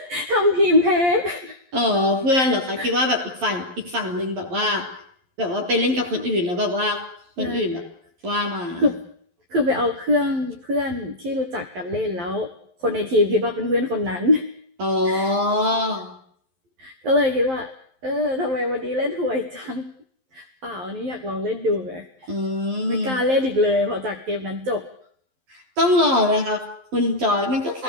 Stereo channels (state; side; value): late; left; 11 ms